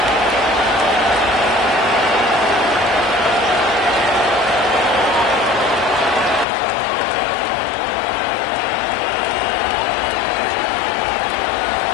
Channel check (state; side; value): drops out; right; at 6.5 s